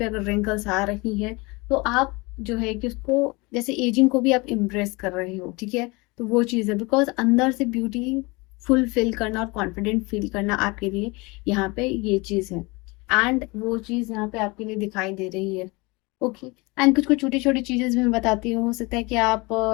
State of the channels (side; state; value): right; quieter; 25.7 dB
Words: अगर रिंकल्स आ रही हैं तो आप जो है कि उसको, जैसे एजिंग को भी आप इम्प्रेस कर रहे हो। ठीक है, तो वो चीज़ है, बिकॉज अंदर से ब्यूटी फुलफिल करना और कॉन्फिडेंट फील करना आपके लिए यहाँ पे ये चीज़ है। एंड वो चीज़ यहाँ पे आपके लिए दिखाई दे रही है। ओके, एंड कुछ कुछ छोटी छोटी चीजें भी मैं बताती हूँ। हो सकता है कि आप